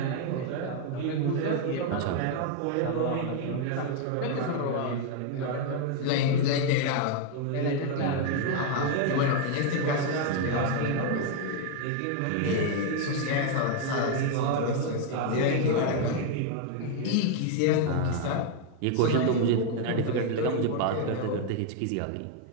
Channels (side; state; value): both; different; correlation 0.00